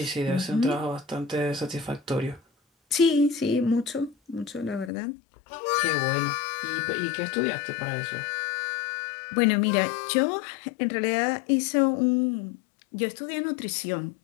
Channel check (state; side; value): drops out; right; at 4.9 s